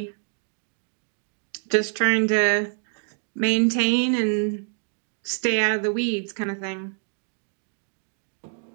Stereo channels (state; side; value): silent; left; 58 dB below the other